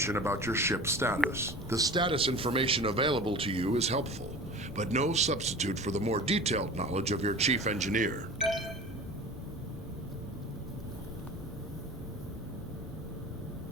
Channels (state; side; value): normal; both; correlation 0.37